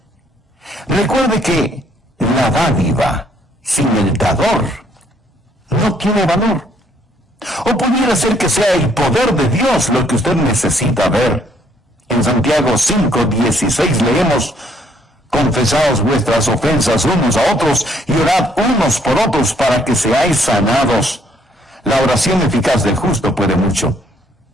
Recuerde que la dádiva sin el dador no tiene valor. O pudiera ser que sea el poder de Dios lo que usted necesita ver. En Santiago 5:16 leemos: confesaos vuestras ofensas unos a otros y orad unos por otros para que seáis sanados. La oración eficaz del justo puede mucho.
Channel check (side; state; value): both; normal; correlation 0.67